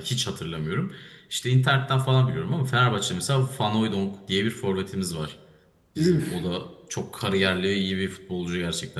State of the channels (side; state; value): both; identical; correlation 1.00